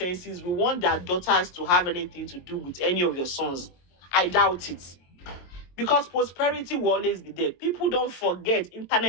will want their daughters to have anything to do with any of your sons. I doubt it. Because prosperity will always be there. People don't forget.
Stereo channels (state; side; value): late; right; 22 ms